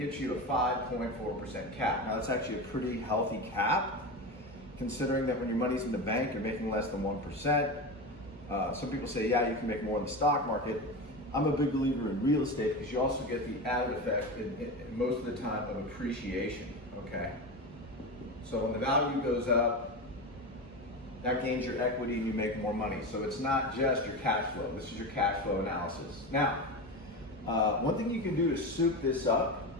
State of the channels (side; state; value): both; normal; correlation 0.23